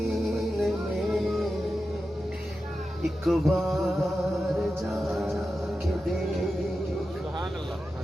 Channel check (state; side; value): normal; both; correlation 0.91